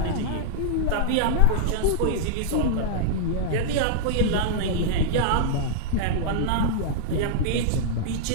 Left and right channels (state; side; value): different; both; correlation -0.01